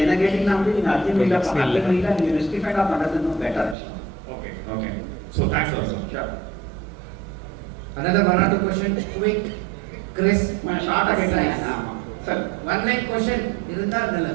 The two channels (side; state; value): left; drops out; at 3.8 s